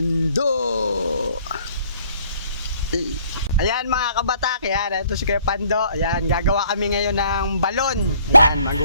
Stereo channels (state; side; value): inverted; both; correlation -0.59